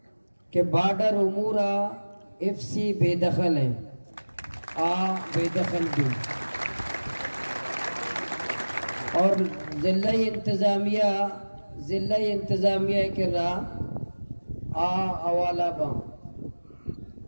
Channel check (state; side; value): inverted; both; correlation -1.00